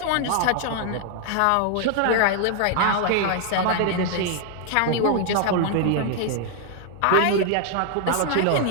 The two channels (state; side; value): different; both; correlation 0.00